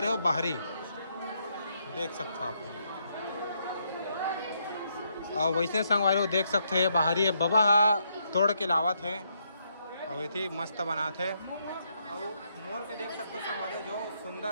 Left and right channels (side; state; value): both; inverted; correlation -0.76